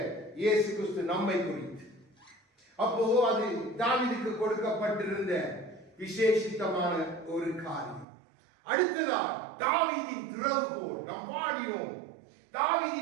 இயேசு கிறிஸ்து நம்மை குறித்து. அப்போ அது தாவீதுக்கு கொடுக்கப்பட்டிருந்த விசேஷித்தமான ஒரு காரியம். அடுத்ததாக தாவீதின் திறவுகோல். நாம் பாடினோம்,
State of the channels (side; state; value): left; drops out; at 8.1 s